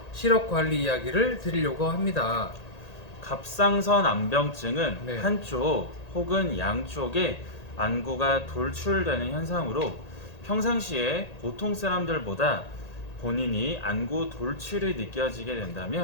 시력 관리 이야기를 드리려고 합니다. 갑상선 안병증은 네. 한쪽 혹은 양쪽에 안구가 돌출되는 현상으로 평상시에 보통 사람들보다 본인이 안구 돌출이 느껴지게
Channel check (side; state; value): right; late; 1.8 ms